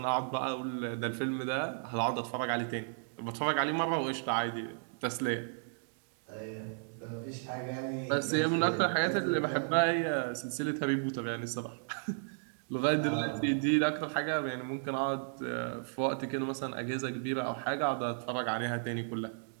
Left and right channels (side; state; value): left; silent; digital silence